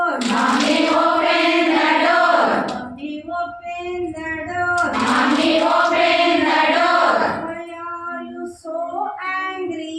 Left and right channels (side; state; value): both; identical; correlation 1.00